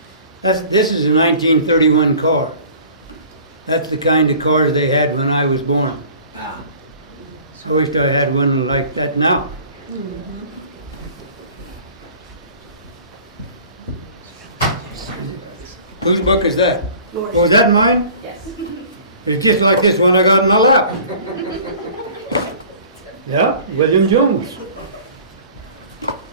this is a 1931 car. That's the kind of cars they had when I was born. Ah. I wished I had one like that now. Whose book is that? Oh, is that mine? Yes. It's just like this one I got in my lap. Yeah, William Jones.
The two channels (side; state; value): both; inverted; correlation -0.46